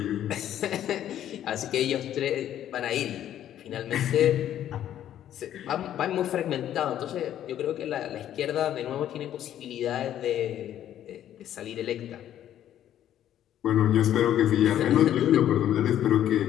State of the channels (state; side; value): quieter; right; 11.2 dB